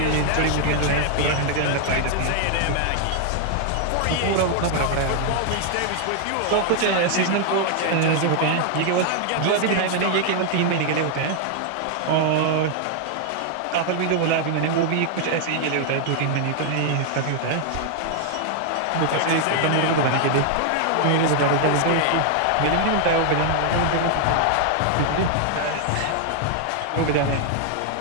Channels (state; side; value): different; both; correlation 0.00